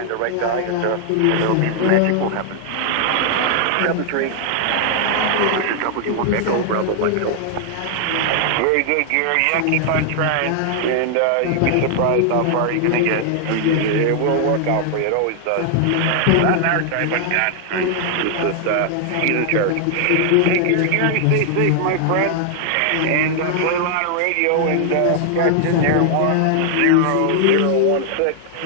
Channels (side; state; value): both; different; correlation 0.00